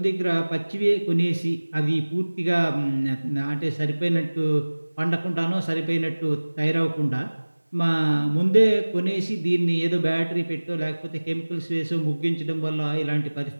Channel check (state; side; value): inverted; both; correlation -1.00